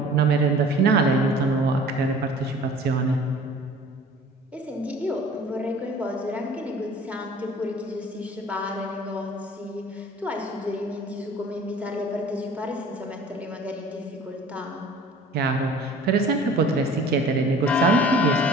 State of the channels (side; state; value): both; normal; correlation 0.47